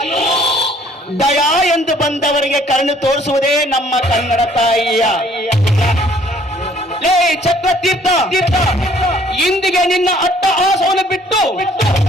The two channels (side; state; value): both; normal; correlation 0.59